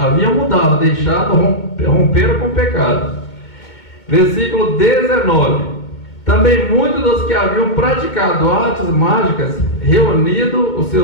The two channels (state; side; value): late; right; 2.2 ms